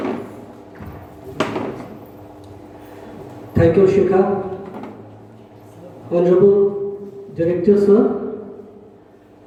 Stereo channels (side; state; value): both; identical; correlation 1.00